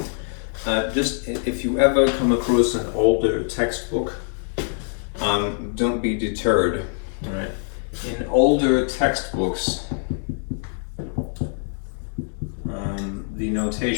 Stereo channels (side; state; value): right; silent; 63 dB below the other